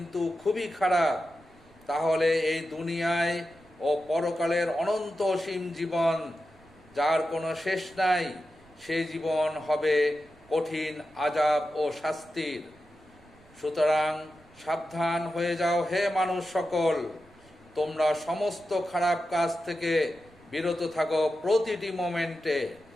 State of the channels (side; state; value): right; noise; rumble, 27 dB below the sound